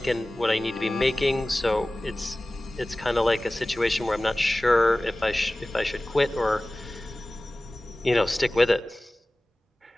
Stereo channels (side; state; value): both; normal; correlation 0.98